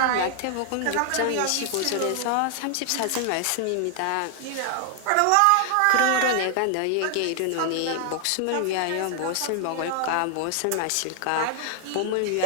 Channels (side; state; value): both; different; correlation 0.00